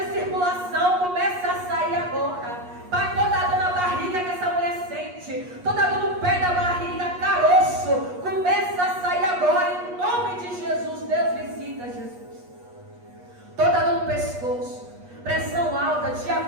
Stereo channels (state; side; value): late; left; 8.3 ms